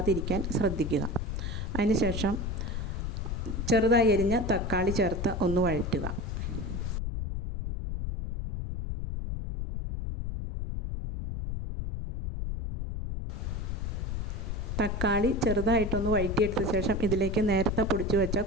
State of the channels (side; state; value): left; noise; rumble, 3 dB below the sound